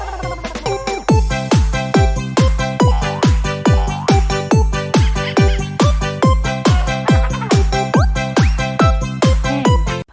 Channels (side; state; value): both; identical; correlation 1.00